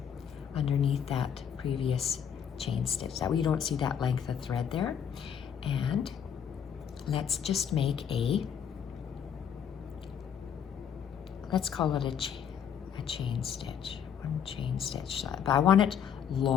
underneath that previous chain stitch. That way you don't see that length of thread there. And let's just make let's call it a chain stitch. 1 chain stitch, but I want it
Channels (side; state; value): right; quieter; 8.2 dB